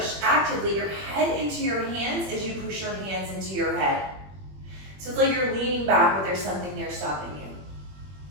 actively your head into your hands as you push your hands into your head. So it's like you're leaning back, but there's something there stopping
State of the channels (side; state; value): left; late; 21 ms